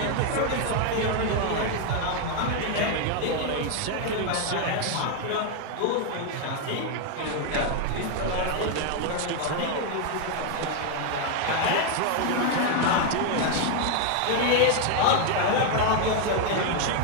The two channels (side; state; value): both; different; correlation 0.00